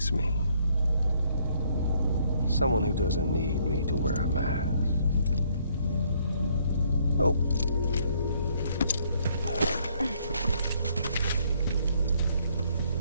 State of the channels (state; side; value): inverted; both; correlation -0.67